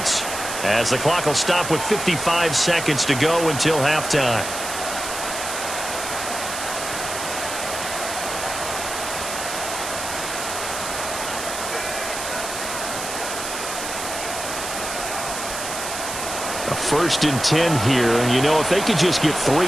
as the clock will stop with 55 seconds to go until halftime. A 1st and 10 here, and you know, if they could just get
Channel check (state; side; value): noise; right; hiss, 6 dB below the sound